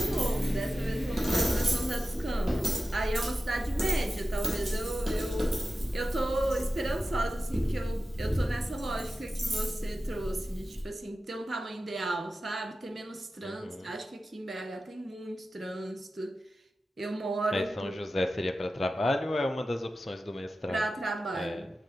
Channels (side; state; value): both; normal; correlation 0.93